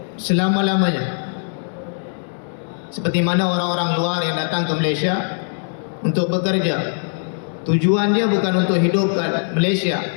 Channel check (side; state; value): right; silent; digital silence